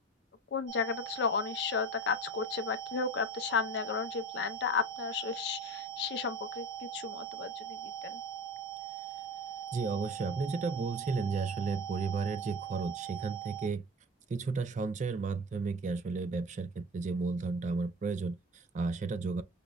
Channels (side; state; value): both; normal; correlation 0.33